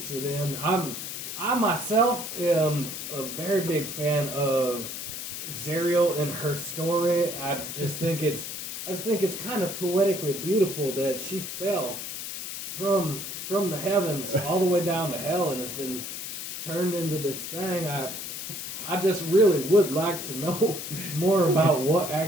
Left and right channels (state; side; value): noise; left; hiss, 7 dB below the sound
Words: in? I myself am a very big fan of Zerial and her story. I just think it's kind of poetically beautiful that she fell from the heavens all the way down to hell and has been turned into this thing. I just really would like to know more about what